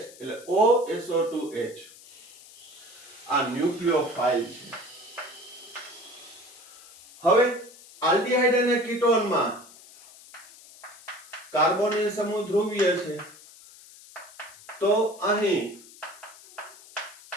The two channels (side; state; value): left; noise; hiss, 21 dB below the sound